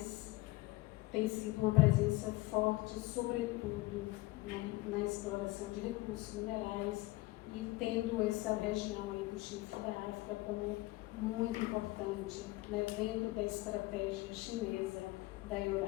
tem sido uma presença forte, sobretudo, né, na exploração de recursos minerais e tendo essa região aí do Chifre da África como muito importante, né, dentro da estratégia chinesa da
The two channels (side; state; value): right; quieter; 20.3 dB